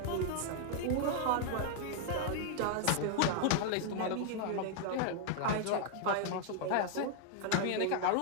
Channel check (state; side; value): different; both; correlation -0.01